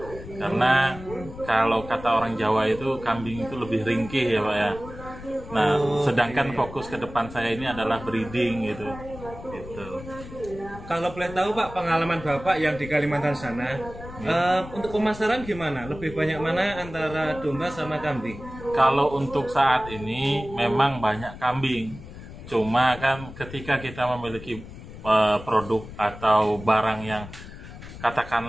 Karena kalau kata orang Jawa itu kambing itu lebih ringkih ya Pak ya. Nah, sedangkan fokus ke depan saya ini adalah breeding gitu. Gitu. Kalau boleh tahu Pak, pengalaman Bapak yang di Kalimantan sana, untuk pemasaran gimana? Lebih banyak mana antara domba sama kambing? Kalau untuk saat ini memang banyak kambing. Cuma kan ketika kita memiliki produk atau barang yang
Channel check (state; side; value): noise; left; rumble, 14 dB below the sound